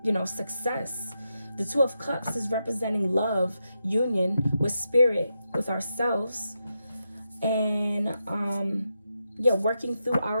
you know, success. The Two of Cups is representing love, union with Spirit, with ourselves. And, yeah, working through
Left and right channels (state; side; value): inverted; both; correlation -0.86